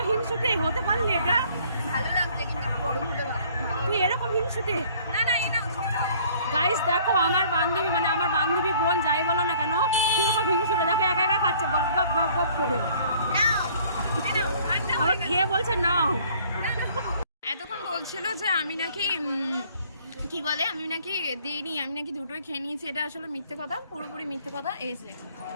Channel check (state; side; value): inverted; both; correlation -0.56